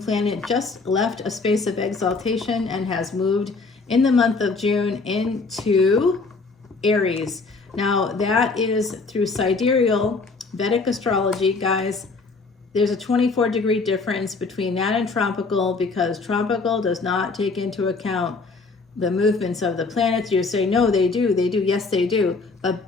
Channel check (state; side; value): quieter; right; 4.1 dB